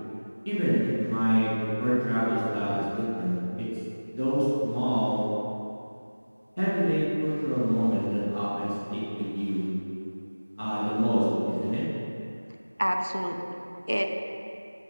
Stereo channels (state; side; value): inverted; both; correlation -1.00